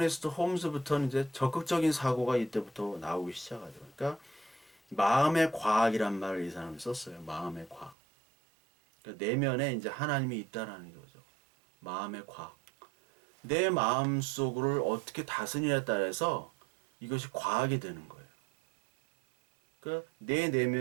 홈즈부터는 이제 적극적인 사고가 이때부터 나오기 시작하죠. 그러니까 마음의 과학이란 말을 이 사람이 썼어요. 마음의 과학. 그러니까 내면에 이제 하나님이 있다라는 거죠. 마음의 과학. 내 마음 속을 어떻게 다스리냐에 따라서 이것이 과학이 되는 거예요. 그러니까 내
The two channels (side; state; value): left; drops out; at 8.0 s